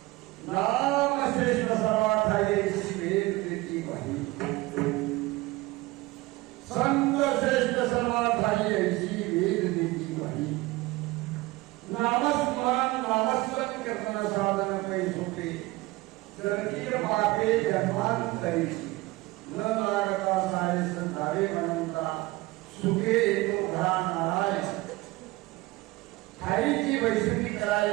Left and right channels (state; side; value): quieter; left; 20.5 dB